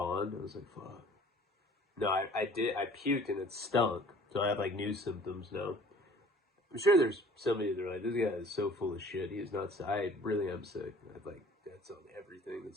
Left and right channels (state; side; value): normal; both; correlation 0.51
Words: I was like, fuck. No, I did. I puked and it stunk. So I have like new symptoms now. I'm sure there's somebody that's like, this guy is so full of shit. He's not. I really am sick. That's on everything